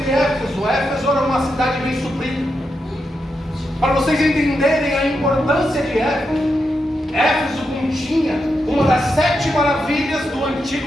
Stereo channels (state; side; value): normal; both; correlation 0.85